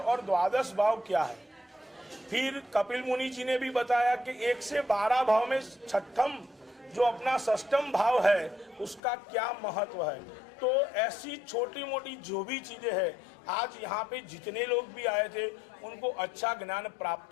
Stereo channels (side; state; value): right; drops out; at 9.0 s